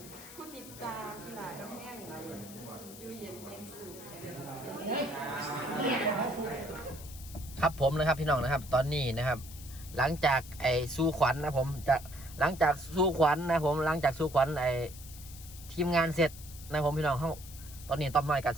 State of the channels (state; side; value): noise; left; hiss, 16 dB below the sound